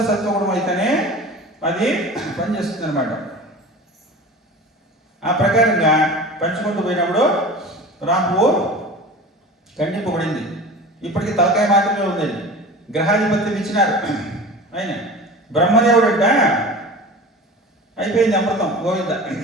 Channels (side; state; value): both; normal; correlation 0.36